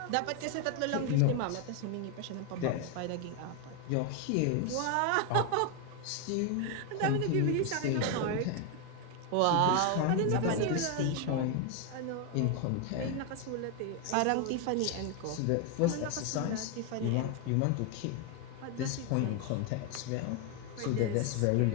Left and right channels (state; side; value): different; both; correlation 0.01